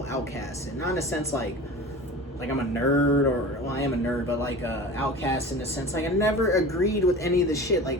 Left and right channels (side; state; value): both; normal; correlation 0.35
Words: outcast, and not in a sense like I'm a nerd, or, well, I am a nerd, but like outcast in the sense, like, I never agreed with any of the shit.